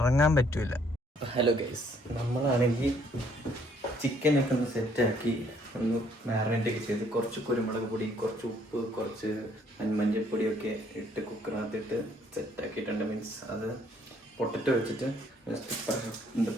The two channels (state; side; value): normal; both; correlation 0.65